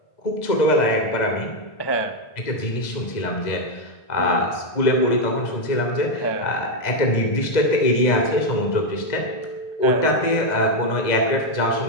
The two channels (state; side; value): late; right; 2.0 ms